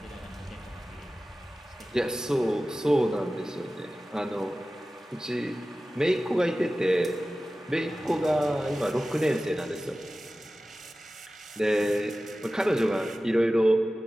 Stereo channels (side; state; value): both; normal; correlation 0.96